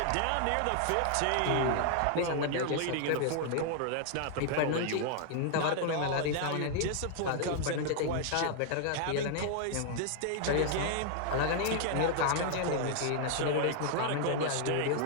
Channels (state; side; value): different; both; correlation 0.00